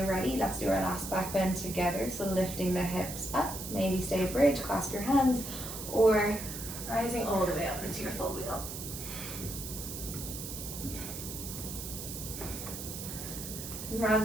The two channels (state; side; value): noise; right; hiss, 8 dB below the sound